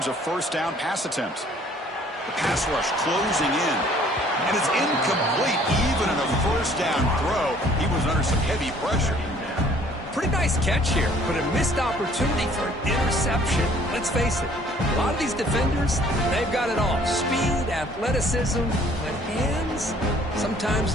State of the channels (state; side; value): normal; both; correlation 0.57